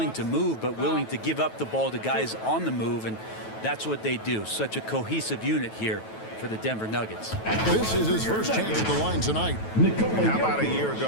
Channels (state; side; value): late; right; 9.2 ms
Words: to move, but willing to give up the ball to guys on the move, and that's what they do. Such a cohesive unit here for the Denver Nuggets. This is his first chance at the line tonight. How about a year